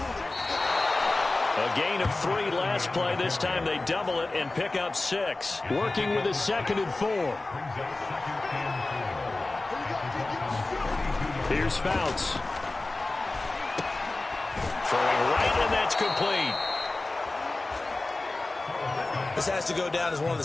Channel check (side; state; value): right; quieter; 3.1 dB